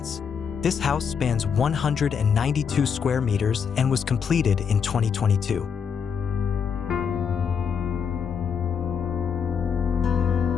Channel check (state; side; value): quieter; right; 6.8 dB